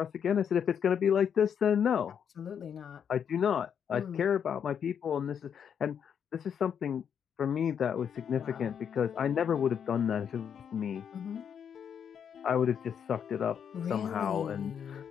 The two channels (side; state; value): right; quieter; 7.9 dB